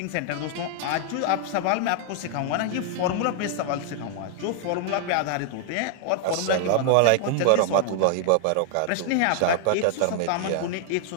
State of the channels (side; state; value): both; different; correlation 0.00